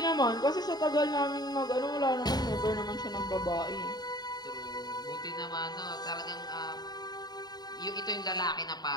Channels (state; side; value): late; right; 0.20 ms